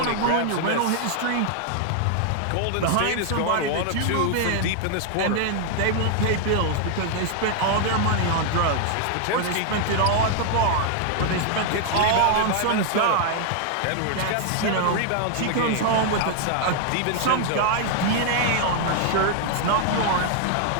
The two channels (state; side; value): different; both; correlation 0.00